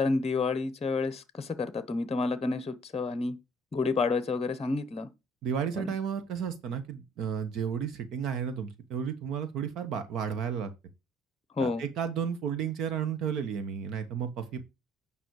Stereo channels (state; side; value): normal; both; correlation 0.57